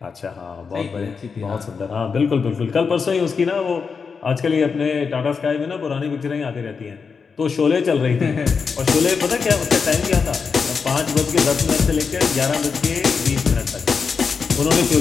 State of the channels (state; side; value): quieter; right; 5.5 dB